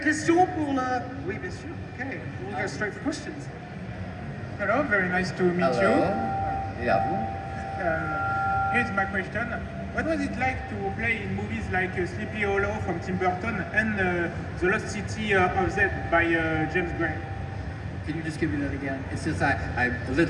pour le... Oui, bien sûr. Okay, we'll go straight for questions. Hello, very nice to meet Hello. you. Yeah. Here's my question. What was it like to play in movies like Sleepy Hollow from Tim Burton and The Lost City of Z by James Gray? Can you just give me that again? It's just I'm a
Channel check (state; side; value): identical; both; correlation 1.00